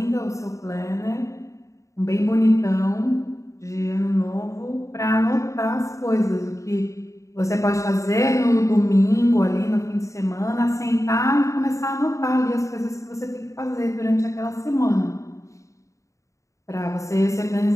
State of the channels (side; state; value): right; late; 0.15 ms